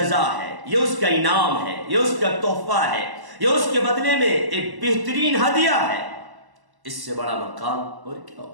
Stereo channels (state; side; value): late; left; 1.1 ms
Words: ہے، یہ اس کا انعام ہے، یہ اس کا تحفہ ہے، یہ اس کے بدلے میں ایک بہترین ہدیہ ہے۔ اس سے بڑا مقام اور کیا